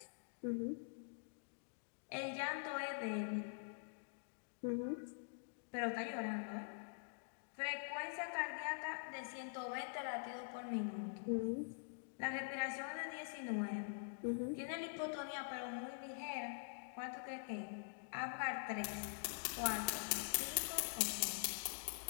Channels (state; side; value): silent; right; digital silence